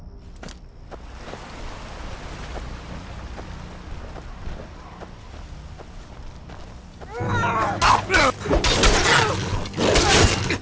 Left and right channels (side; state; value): both; identical; correlation 1.00